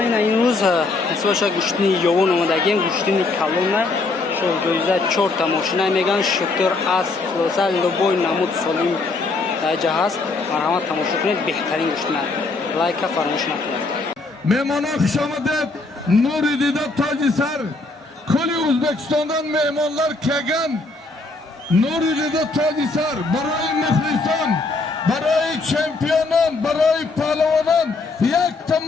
ин рӯз ҳисоша гӯштини ёвон омадагем, гӯштини калона 2004 тамошина меган шутер аст хулоса лубой намуд солим даҷа ҳаст. марҳамат тамошо кунед, беҳтарин гӯштина. лайка фаромӯш накунед. Мehmonlar xush omadib, Nuri Dida toji sar. Kuli O'zbekistondan mehmonlar kelgan. Nuri Dida toji sar. Baroy muxlison, baroy chempionon, baroy pahlovonon, yakta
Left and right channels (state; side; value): quieter; right; 3.5 dB